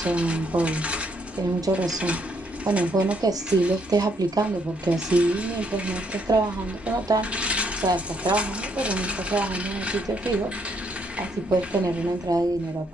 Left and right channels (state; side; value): normal; both; correlation 0.72